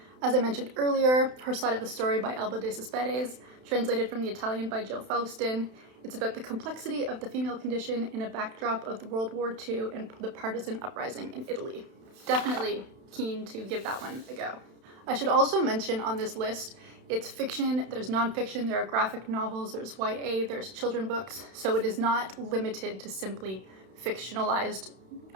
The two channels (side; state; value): left; late; 31 ms